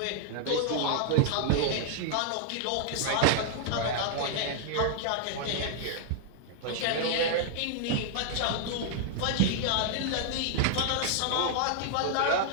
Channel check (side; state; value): both; different; correlation -0.01